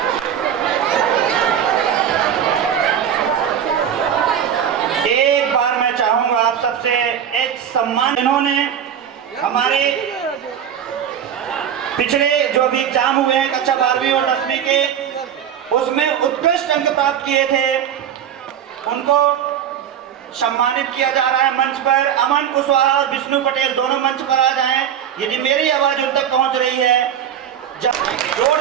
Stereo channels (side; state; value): left; quieter; 9.1 dB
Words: सबसे एक सम्मान, इन्होंने हमारे पिछले जो भी एग्जाम हुए हैं कक्षा 12वीं और 10वीं के, उसमें उत्कृष्ट अंक प्राप्त किए थे, उनको सम्मानित किया जा रहा है। मंच पर अमन कुशवाहा और विष्णु पटेल दोनों मंच पर आ जाएं। यदि मेरी आवाज उन तक पहुंच रही है,